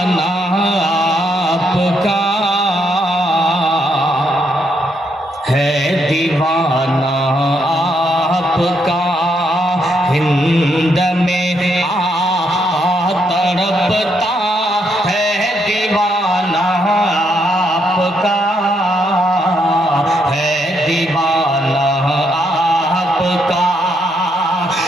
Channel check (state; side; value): normal; both; correlation 0.76